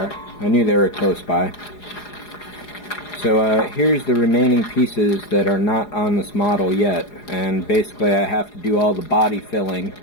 I knew they were close by. So here's the remaining pieces that are not on this model yet, and basically I have to do all the body filling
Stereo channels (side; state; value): right; late; 4.8 ms